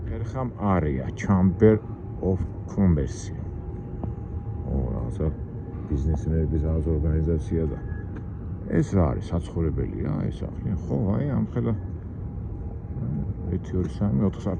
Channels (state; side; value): identical; both; correlation 1.00